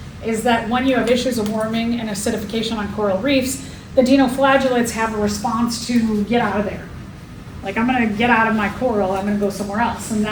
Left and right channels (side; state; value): both; identical; correlation 1.00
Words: is that when you have issues of warming and acidification on coral reefs, the dinoflagellates have a response to get out of there. Like, I'm gonna get out of my coral, I'm gonna go somewhere else. And